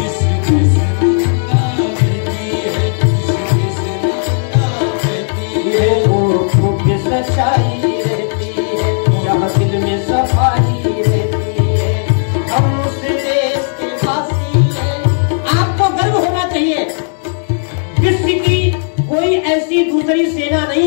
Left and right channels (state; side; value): silent; right; digital silence